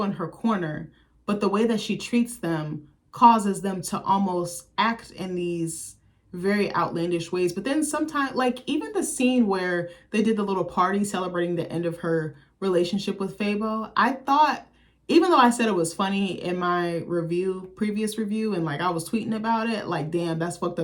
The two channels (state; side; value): identical; both; correlation 1.00